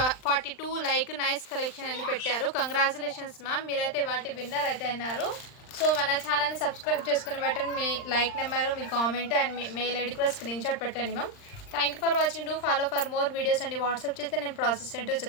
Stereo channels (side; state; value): right; late; 39 ms